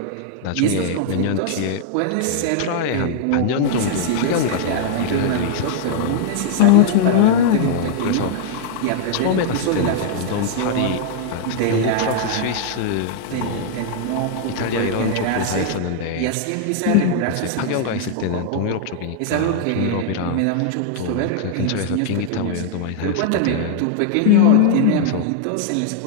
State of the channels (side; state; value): both; different; correlation -0.01